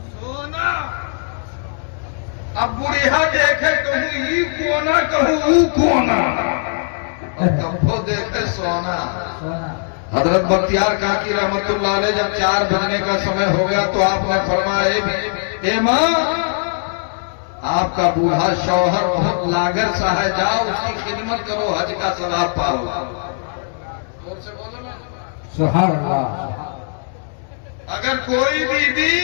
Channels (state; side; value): silent; right; digital silence